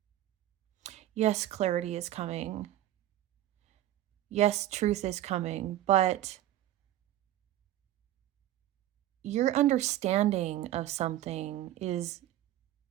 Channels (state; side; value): quieter; left; 13.6 dB